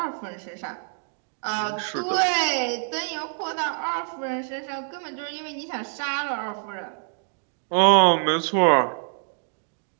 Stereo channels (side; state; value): left; silent; 57 dB below the other